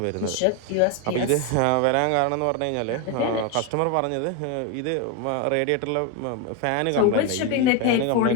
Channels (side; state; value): both; different; correlation 0.02